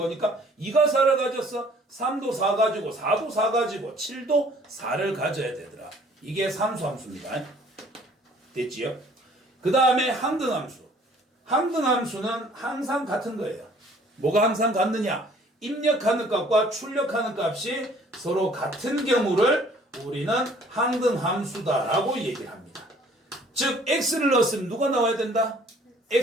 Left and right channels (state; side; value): normal; both; correlation 0.56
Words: 2가 4를 가졌어. 3도 4 가지고 4도 4 가지고 7도 4를 가져야 되더라. 이게 상수함수입니다. 됐지요? 그 다음에 항등함수. 항등함수는 항상 같은 거예요. 뭐가 항상 같느냐? 입력하는 값과 출력하는 값이 서로 같은 경우를 우리는 항등함수다라고 얘기를 합니다. 즉 x를 넣었으면 누가 나와야 된다?